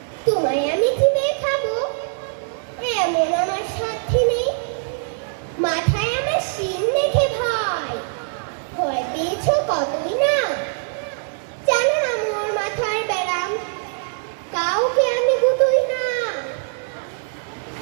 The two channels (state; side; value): silent; left; 64 dB below the other